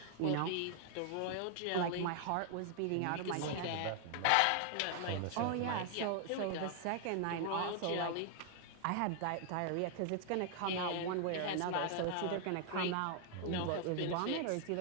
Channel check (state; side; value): different; both; correlation 0.00